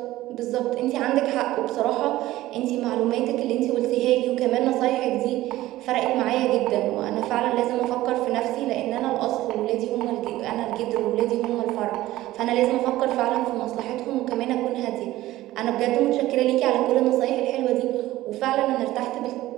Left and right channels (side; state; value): left; quieter; 16.1 dB